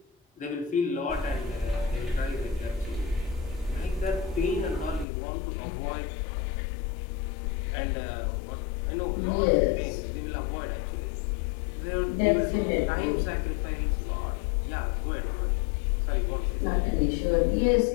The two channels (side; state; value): right; drops out; at 5.1 s